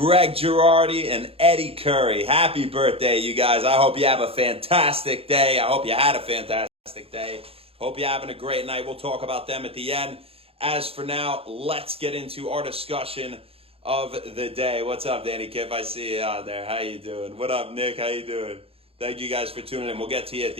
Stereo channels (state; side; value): late; left; 0.28 ms